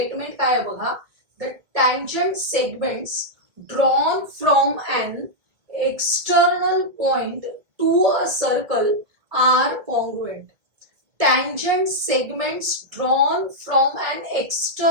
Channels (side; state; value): left; late; 1.7 ms